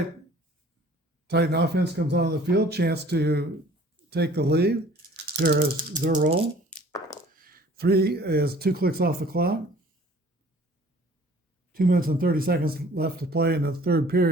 Titan offense comes on the field, chance to take the lead. Here is their roll. 3 is 2 clicks off the clock. 2 minutes and 30 seconds left to play in the third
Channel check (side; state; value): both; normal; correlation 0.52